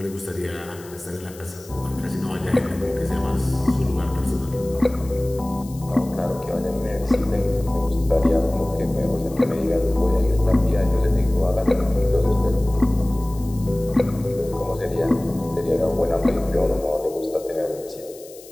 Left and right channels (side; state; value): left; noise; hiss, 20 dB below the sound